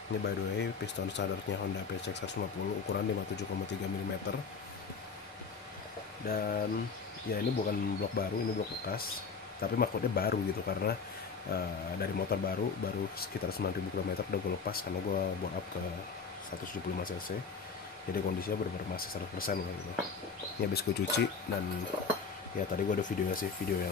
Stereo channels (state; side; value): quieter; right; 5.3 dB